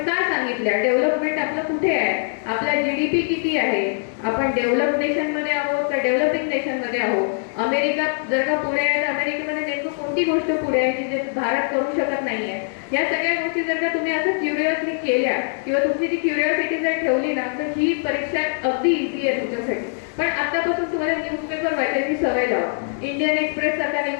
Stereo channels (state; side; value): silent; right; digital silence